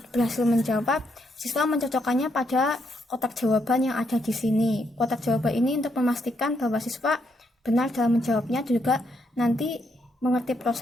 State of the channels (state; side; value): normal; both; correlation 0.77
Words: berhasil menjawab, siswa mencocokkannya pada kotak jawaban yang ada di sini. Kotak jawaban ini untuk memastikan bahwa siswa benar dalam menjawabnya, juga nanti mengerti